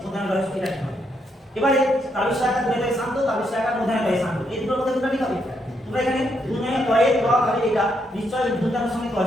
মধ্যাহ্ন রয়েছে, এটা ঠিক হবে। এবারে তাবিজ আকার দুনয়টাই শান্ত, তাবিজ আকার মধ্যাহ্নটাই শান্ত, এই দুটোর মধ্যে কোনটা ঠিক হবে? তোমরা এখানে দুনয় তয়ে ড হবে, এটা নিশ্চয় মধ্যাহ্নের সঙ্গে ড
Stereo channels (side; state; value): both; normal; correlation 0.77